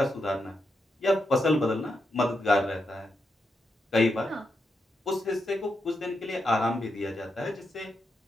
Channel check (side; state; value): both; normal; correlation 0.84